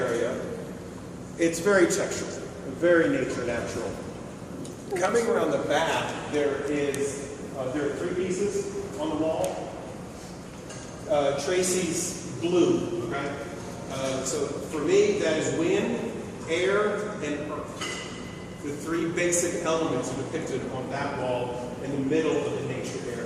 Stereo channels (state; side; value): identical; both; correlation 1.00